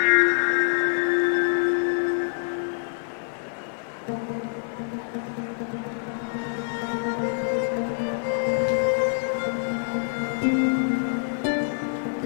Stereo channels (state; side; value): silent; right; digital silence